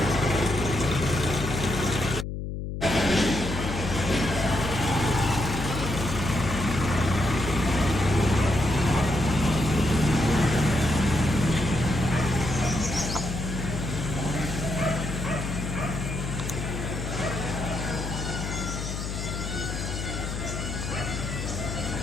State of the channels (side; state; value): left; noise; hum, 5 dB below the sound